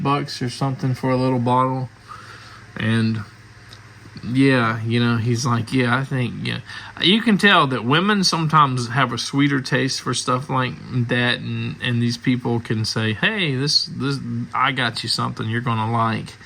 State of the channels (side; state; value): both; identical; correlation 1.00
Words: or something for a little bottle. And yeah, he's like, yeah, I think, yeah. You can tell that women sometimes have a sweeter taste for stuff like that, and these people can say, hey, this I got you something you're gonna like.